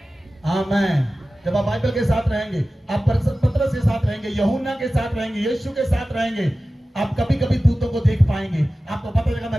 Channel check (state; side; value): normal; both; correlation 0.95